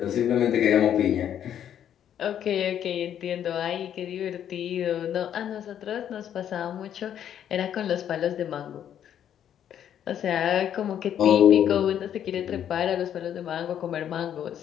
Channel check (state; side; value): quieter; right; 9.8 dB